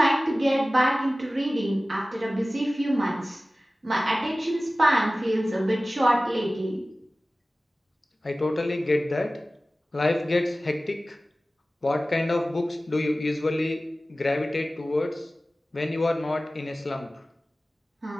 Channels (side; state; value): both; normal; correlation 0.97